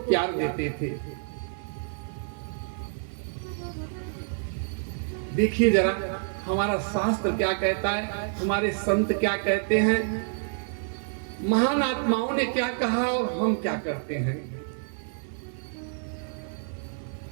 देते थे। देखिए जरा हमारा शास्त्र क्या कहता है, हमारे संत क्या कहते हैं, महान आत्माओं ने क्या कहा और हम क्या करते हैं।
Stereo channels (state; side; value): silent; left; digital silence